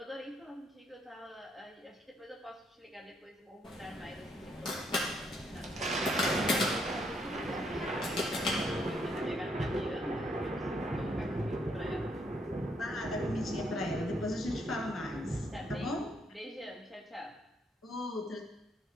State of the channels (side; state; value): both; normal; correlation 0.73